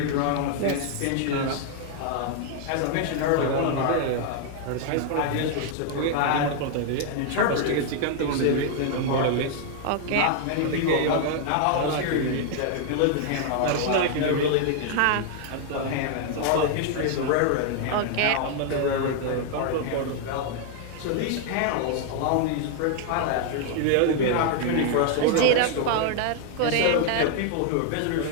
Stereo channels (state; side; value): different; both; correlation 0.00